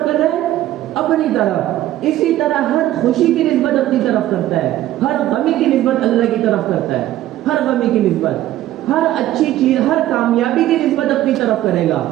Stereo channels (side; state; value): left; quieter; 14.1 dB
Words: کر رہا ہے؟ اپنی طرف. اسی طرح ہر خوشی کی نسبت اپنی طرف کرتا ہے، ہر غمی کی نسبت اللہ کی طرف کرتا ہے. ہر غمی کی نسبت، ہر اچھی چیز، ہر کامیابی کی نسبت اپنی طرف کرے گا،